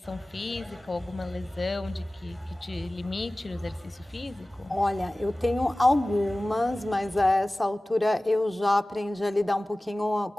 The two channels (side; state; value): both; normal; correlation 0.98